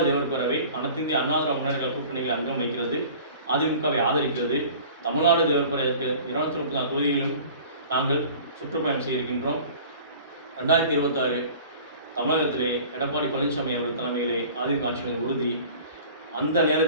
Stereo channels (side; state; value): both; inverted; correlation -0.44